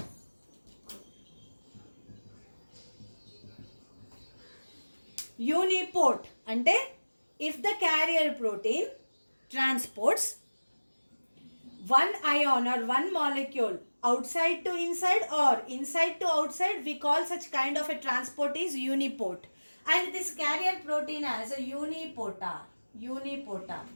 Uniport అంటే if the carrier protein transports one ion or one molecule outside to inside or inside to outside, we call such kind of a transport is uniport. And this carrier protein as a unipotar. Unipotar.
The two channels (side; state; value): both; inverted; correlation -1.00